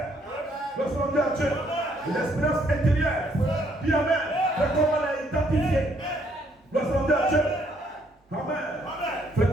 Lorsqu'on dit à Dieu, l'expérience intérieure. Dis Amen. Fais comment la identifier. Lorsqu'on dit à Dieu, Amen. Fais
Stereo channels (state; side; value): normal; both; correlation 0.69